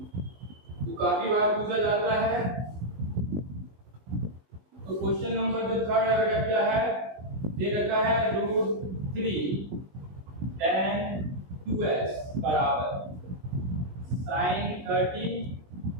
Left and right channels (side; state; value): left; late; 20 ms